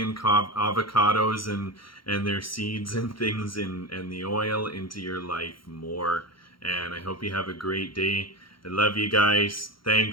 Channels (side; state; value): right; late; 0.73 ms